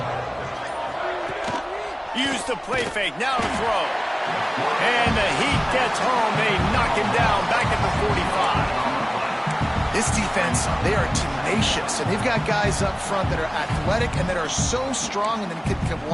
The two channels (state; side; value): identical; both; correlation 1.00